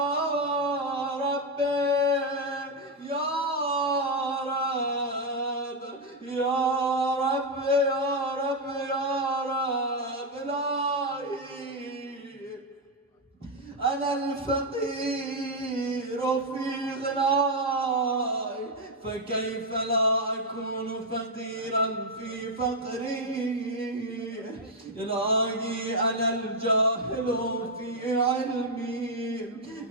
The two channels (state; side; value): normal; both; correlation 0.03